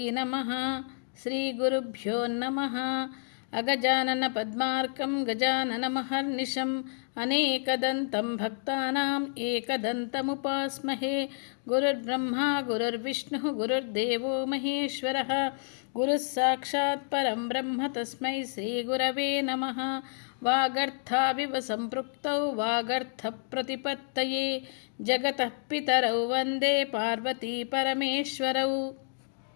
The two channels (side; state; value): right; silent; digital silence